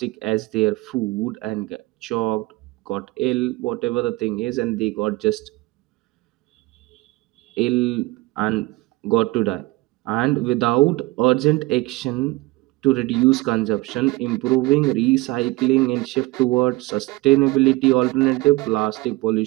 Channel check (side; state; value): left; quieter; 20.7 dB